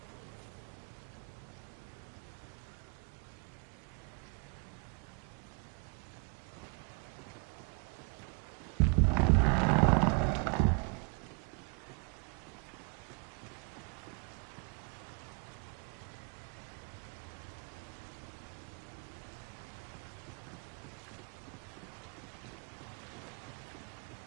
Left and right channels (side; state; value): left; quieter; 36.1 dB